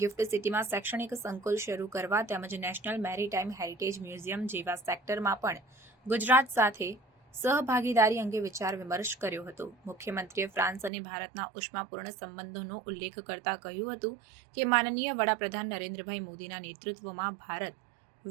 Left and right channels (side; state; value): left; drops out; at 10.9 s